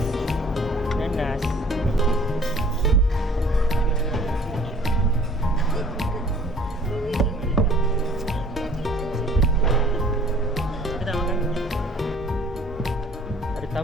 Nanas. Kita tak makan. Ada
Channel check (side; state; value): both; normal; correlation 0.53